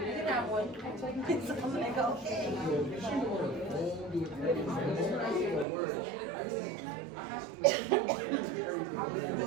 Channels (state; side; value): drops out; left; at 5.7 s